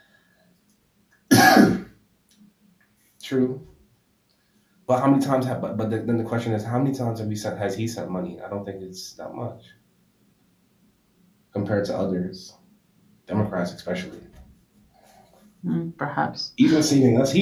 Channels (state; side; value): identical; both; correlation 1.00